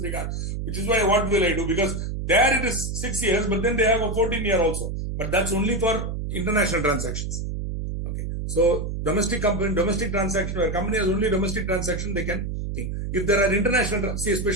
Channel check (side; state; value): right; noise; hum, 4 dB below the sound